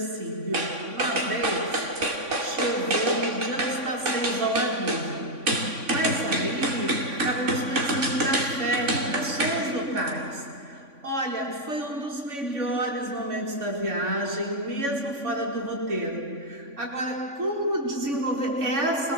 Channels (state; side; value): late; left; 3.5 ms